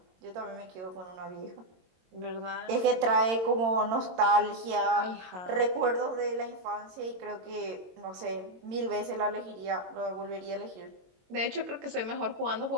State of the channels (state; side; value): late; left; 22 ms